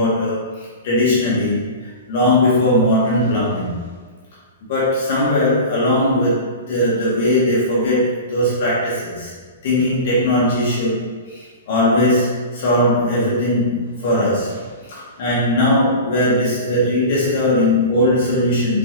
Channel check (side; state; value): both; inverted; correlation -0.31